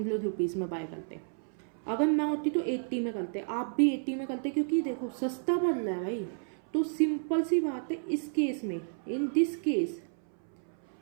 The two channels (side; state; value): left; silent; 57 dB below the other